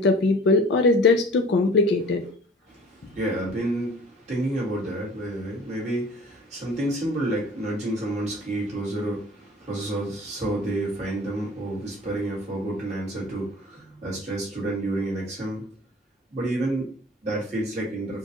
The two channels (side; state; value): both; normal; correlation 0.46